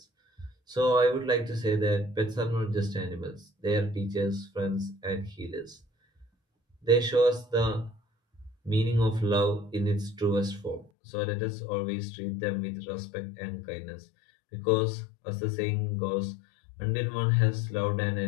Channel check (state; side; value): drops out; right; at 10.9 s